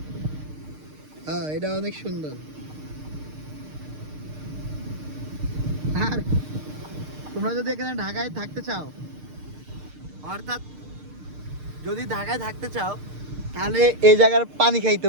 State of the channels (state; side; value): late; left; 6.6 ms